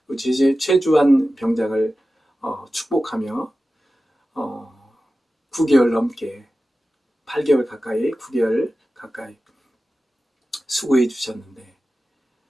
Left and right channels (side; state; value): both; normal; correlation 0.94